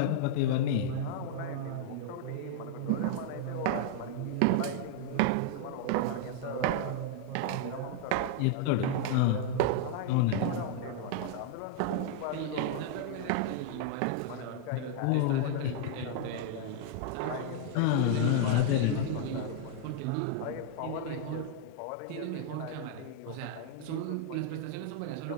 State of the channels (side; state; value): both; different; correlation -0.01